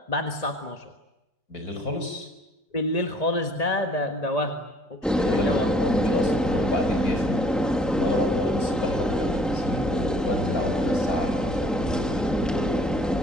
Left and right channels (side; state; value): both; normal; correlation 0.57